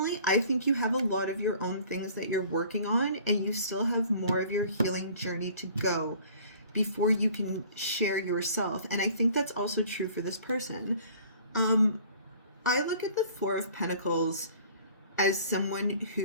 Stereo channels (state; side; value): inverted; both; correlation -0.50